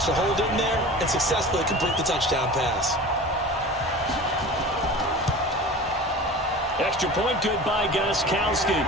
to hold it in there and successfully complete the touchdown pass. Extra point good by Gostkowski,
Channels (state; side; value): normal; both; correlation 0.37